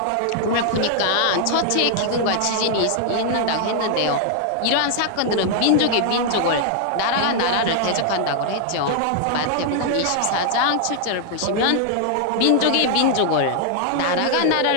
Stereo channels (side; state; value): both; different; correlation 0.00